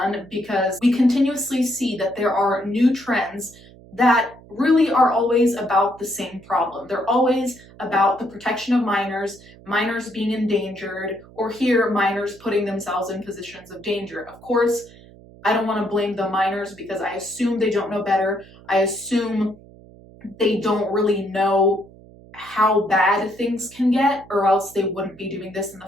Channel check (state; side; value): noise; right; hum, 22 dB below the sound